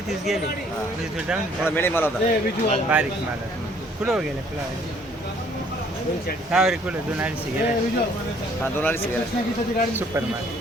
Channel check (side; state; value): both; normal; correlation 0.61